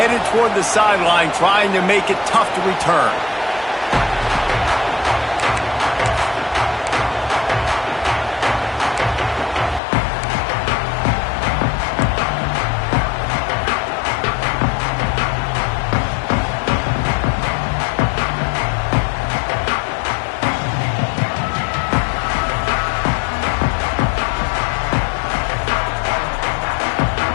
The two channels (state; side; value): drops out; right; at 9.8 s